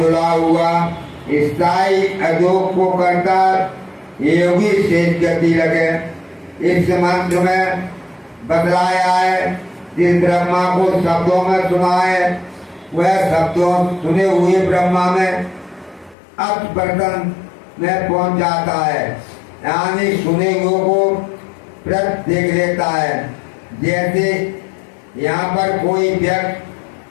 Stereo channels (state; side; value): drops out; right; at 16.2 s